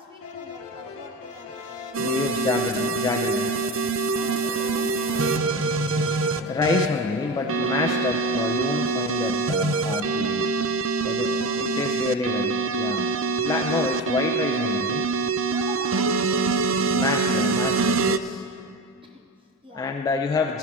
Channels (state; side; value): normal; both; correlation 0.25